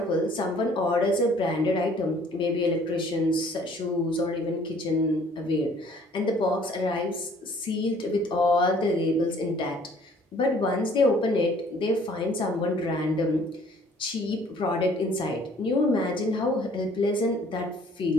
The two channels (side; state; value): both; normal; correlation 0.57